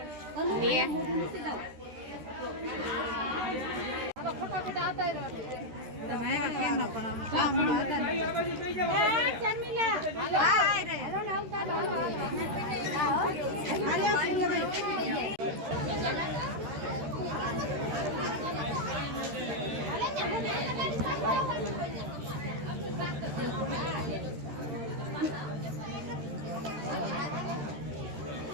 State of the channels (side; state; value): left; late; 13 ms